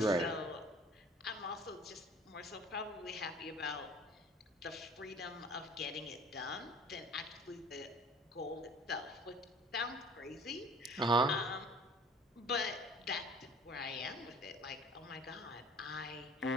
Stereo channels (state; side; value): normal; both; correlation 0.48